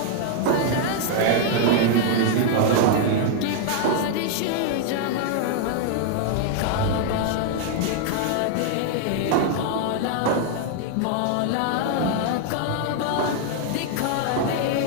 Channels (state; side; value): different; both; correlation 0.00